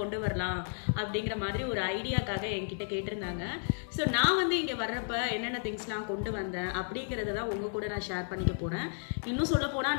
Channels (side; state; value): right; silent; digital silence